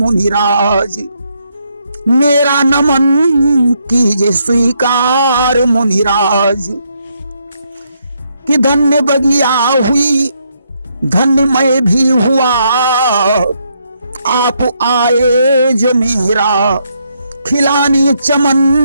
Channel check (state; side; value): inverted; both; correlation -0.76